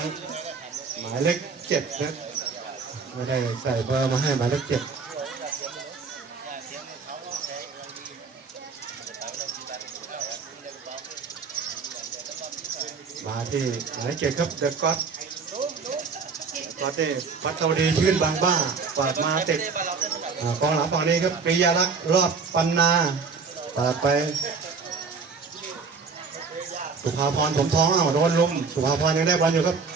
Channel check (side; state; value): left; quieter; 5.0 dB